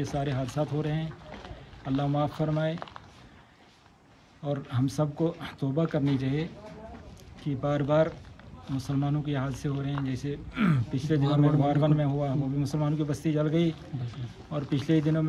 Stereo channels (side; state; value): both; identical; correlation 1.00